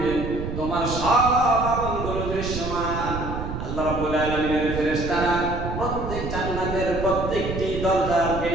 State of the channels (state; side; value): noise; right; rumble, 6 dB below the sound